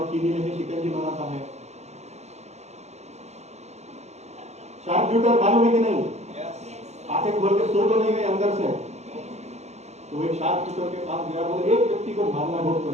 चीनी लेके शिकंजी बनाता है। शार्प शूटर मालूम है कि नहीं? आंखें खोल के सो तो नहीं गए अंदर से। तो एक शार्प शूटर के पास गया, बोले एक व्यक्ति को मारना बहुत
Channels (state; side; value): late; left; 0.32 ms